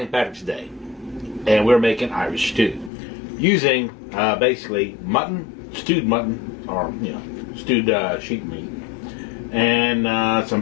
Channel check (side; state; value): right; drops out; at 2.9 s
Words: Patrick's Day. And we're making Irish stew. Using basically mutton, stewed mutton, or stewed sheep meat. And some